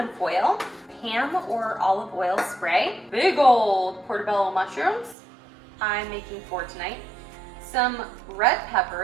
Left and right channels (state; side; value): drops out; left; at 5.2 s